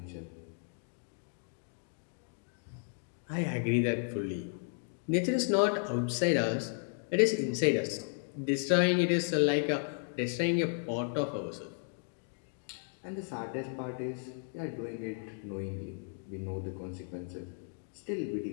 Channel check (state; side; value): silent; right; 55 dB below the other